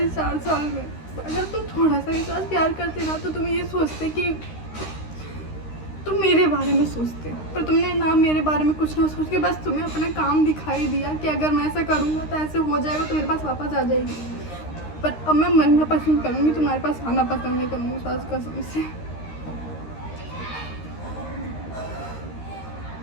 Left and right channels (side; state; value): right; late; 13 ms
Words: 4 साल में। अगर तुम थोड़ा सा मेरे साथ प्यार करते ना तो तुम ये सोचते कि तुम मेरे बारे में सोचते, पर तुमने ना मेरे बारे में कुछ ना सोच के बस तुम्हें अपना काम दिखाई दिया कि अगर मैं ऐसा करूँगा तो ऐसे हो जाएगा, तो मेरे पास वापस आ जाएगी। पर अब मैं मरना पसंद करूँगी, तुम्हारे पास आना पसंद नहीं करूँगी सास कसम से।